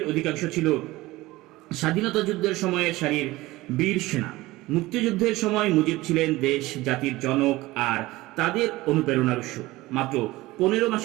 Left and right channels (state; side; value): quieter; left; 19.0 dB